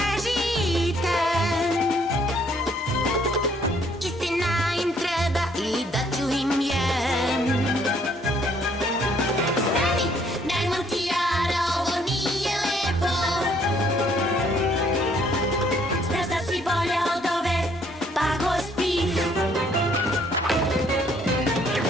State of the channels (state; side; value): normal; both; correlation 0.65